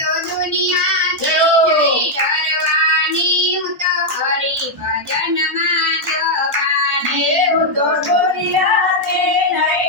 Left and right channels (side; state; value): both; normal; correlation -0.01